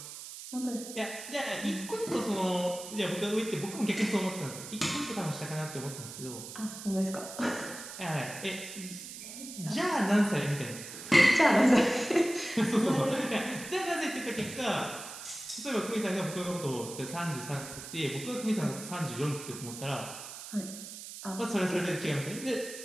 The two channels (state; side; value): noise; right; hiss, 11 dB below the sound